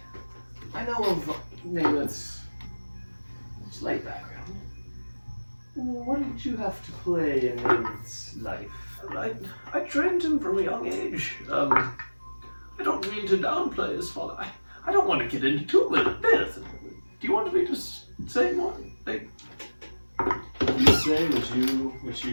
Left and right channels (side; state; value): both; inverted; correlation -1.00